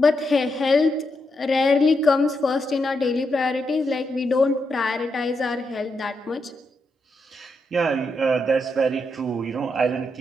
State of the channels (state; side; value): normal; both; correlation 0.83